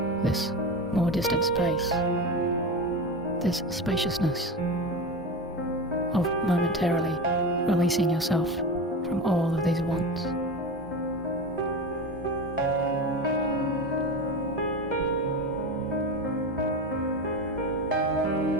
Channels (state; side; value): normal; both; correlation 0.24